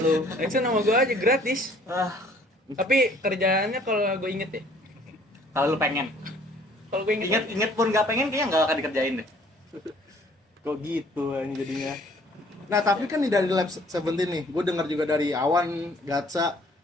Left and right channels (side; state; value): both; normal; correlation 0.58